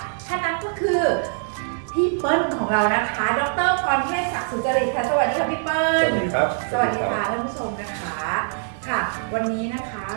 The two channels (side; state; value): left; silent; digital silence